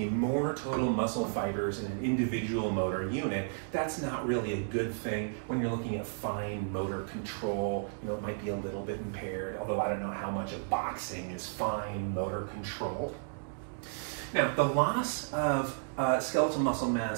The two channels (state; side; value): silent; left; digital silence